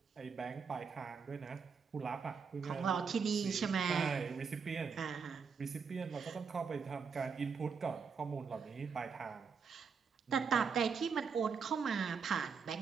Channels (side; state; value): left; quieter; 5.8 dB